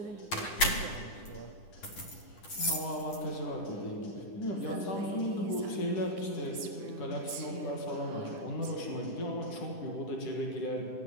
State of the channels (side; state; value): right; late; 10 ms